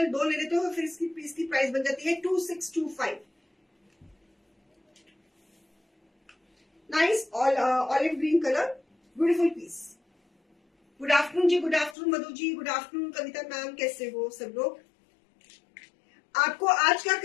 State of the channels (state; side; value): drops out; right; at 12.0 s